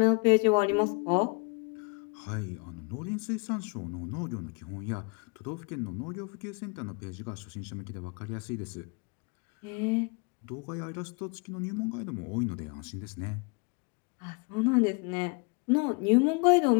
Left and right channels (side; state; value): right; quieter; 32.8 dB